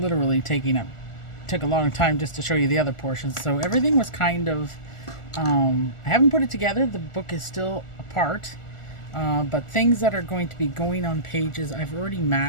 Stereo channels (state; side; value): late; right; 1.4 ms